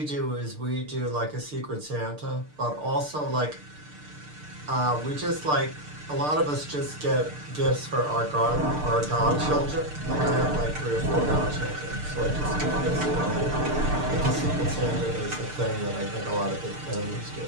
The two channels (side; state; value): left; late; 6.7 ms